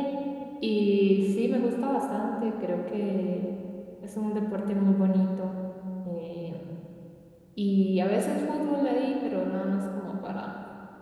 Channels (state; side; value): identical; both; correlation 1.00